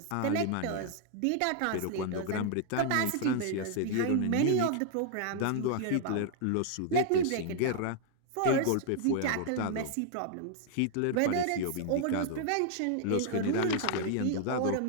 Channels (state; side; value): different; both; correlation 0.00